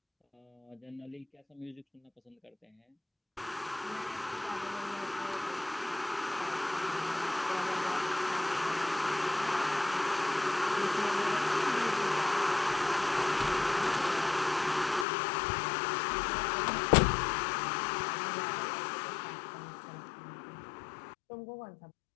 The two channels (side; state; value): right; drops out; at 15.1 s